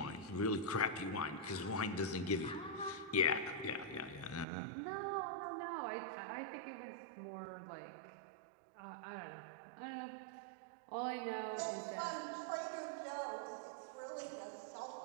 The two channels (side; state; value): left; drops out; at 4.5 s